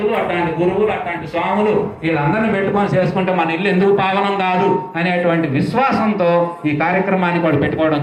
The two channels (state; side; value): identical; both; correlation 1.00